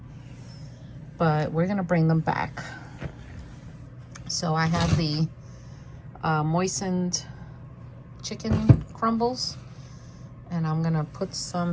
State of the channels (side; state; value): both; identical; correlation 1.00